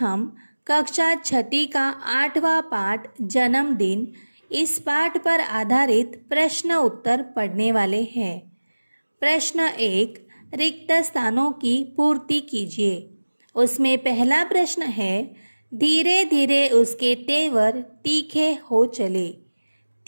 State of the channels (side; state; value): both; inverted; correlation -1.00